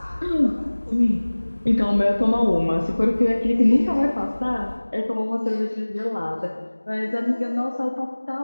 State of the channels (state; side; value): inverted; both; correlation -1.00